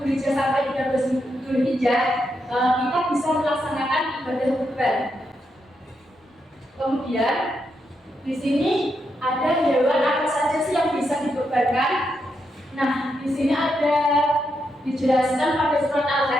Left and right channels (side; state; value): both; normal; correlation 0.82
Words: Dzulhijjah sampai 13 Dzulhijjah kita bisa melaksanakan ibadah kurban. Kemudian di sini ada hewan apa saja sih yang bisa dikurbankan? Nah di sini ada dijelaskan pada surat